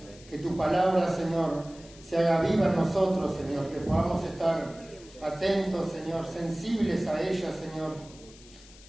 que tu palabra, Señor, se haga viva en nosotros, Señor, que podamos estar atentos, Señor, sensibles a ella, Señor.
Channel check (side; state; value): left; noise; hiss, 22 dB below the sound